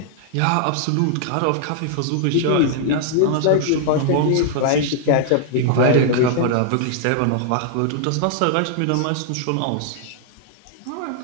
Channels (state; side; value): different; both; correlation -0.01